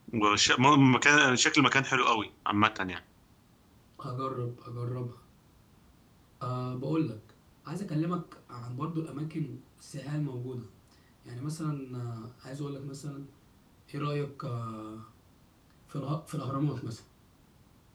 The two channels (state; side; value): identical; both; correlation 1.00